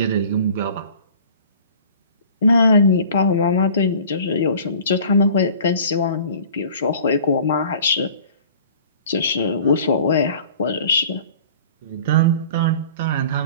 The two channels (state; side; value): inverted; both; correlation -0.46